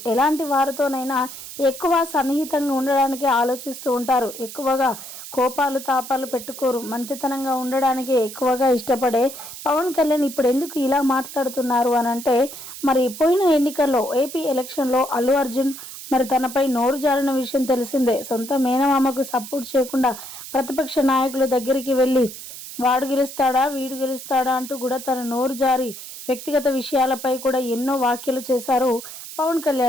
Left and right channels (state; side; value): noise; right; hiss, 12 dB below the sound